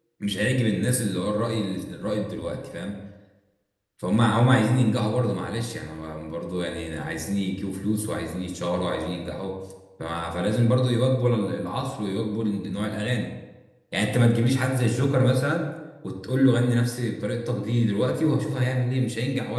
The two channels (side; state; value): both; identical; correlation 1.00